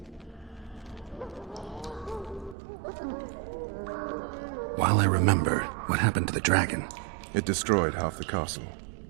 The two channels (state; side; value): drops out; left; at 2.6 s